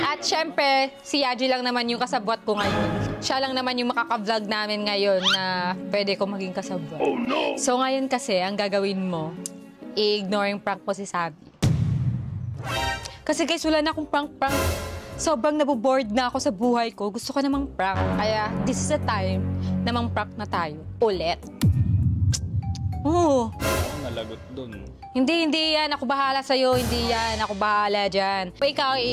syempre, si Yaji lang naman yung kasabwat ko ngayon. Siya lang naman yung makaka-vlog namin ngayon na pwede ko maging kasabwat. Oh no! So, ngayon kasi, ang gagawin mo, i-ignoring prank mo si Sabi. Kasi guys, wala na akong prank-prank. Sobrang nabobored na ako sa buhay ko. Gusto ko namang prank. Kaya, this is the time namang prank na tayo. Ulit. Oo. Nalagot dun. Hindi yan. Ako bahala sa'yo. Hindi yan. Ako bahala dyan. Pa ikaw,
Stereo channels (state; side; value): identical; both; correlation 1.00